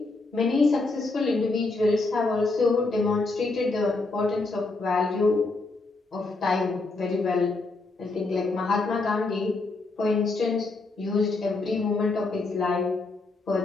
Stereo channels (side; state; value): right; quieter; 3.5 dB